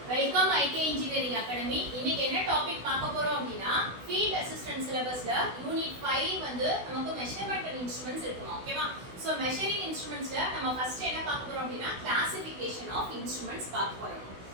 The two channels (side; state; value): left; late; 16 ms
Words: Welcome ஐகே engineering academy. இன்னைக்கு என்ன topic பார்க்க போறோம் அப்படின்னா ஃபீல்ட் அசிஸ்டன்ட் சிலபஸ்ல யூனிட் 5 வந்து நமக்கு மெஷர்மென்ட் அண்ட் இன்ஸ்ட்ருமெண்ட்ஸ் இருக்குமா. ஓகேவா? சோ மெஷரிங் இன்ஸ்ட்ருமெண்ட்ஸ்ல நம்ம ஃபர்ஸ்ட் என்ன பார்க்க போறோம் அப்படின்னா கிளாசிஃபிகேஷன் ஆஃப் இன்ஸ்ட்ருமெண்ட்ஸ் பார்க்க போறோம்.